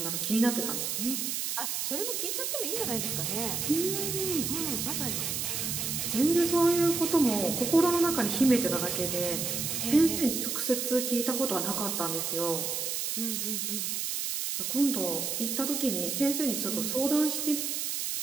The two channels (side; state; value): right; noise; hiss, 1 dB below the sound